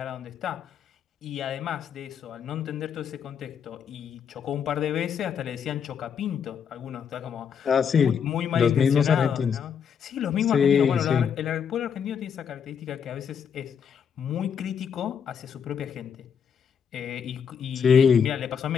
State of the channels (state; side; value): quieter; right; 7.3 dB